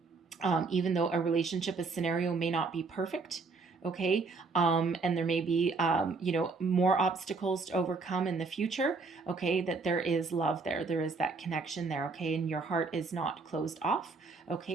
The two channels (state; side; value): quieter; left; 4.2 dB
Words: a relationship, a scenario may not be perfect, okay, and there may be more obstacles to overcome in the future, okay, that there is love there is that connection there, okay, and your heart is not closed off,